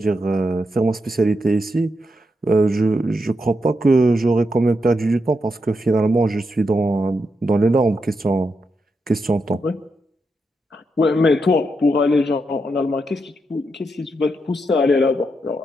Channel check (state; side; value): normal; both; correlation 0.84